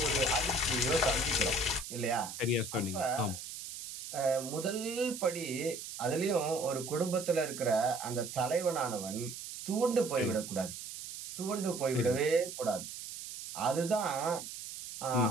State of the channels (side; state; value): right; noise; hiss, 9 dB below the sound